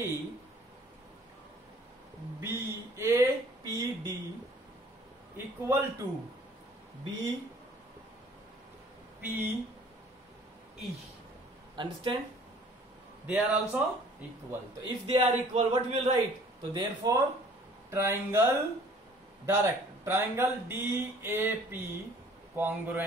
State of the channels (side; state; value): both; normal; correlation 0.54